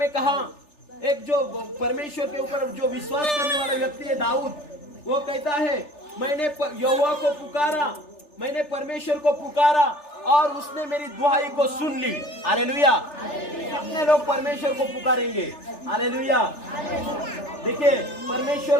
कहा, एक जो परमेश्वर के ऊपर जो विश्वास करने वाला व्यक्ति है दाऊद, वो कहता है मैंने यहोवा को पुकारा, मैंने परमेश्वर को पुकारा और उसने मेरी दुहाई को सुन ली। हालेलुया। कितने लोग परमेश्वर को पुकारेंगे? हालेलुया। देखिए,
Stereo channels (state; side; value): late; right; 3.4 ms